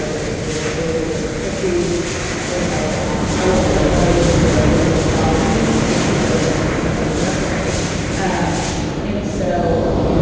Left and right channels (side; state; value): both; identical; correlation 1.00